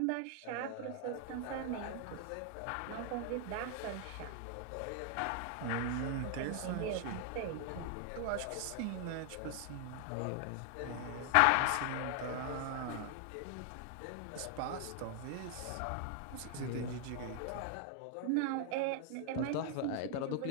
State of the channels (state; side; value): different; both; correlation 0.00